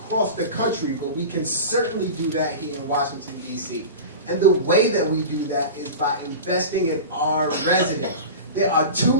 the country, but we can certainly do that here in Washington, D.C. And the way that we do that is by investing in our residents. There are too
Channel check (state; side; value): inverted; both; correlation -0.30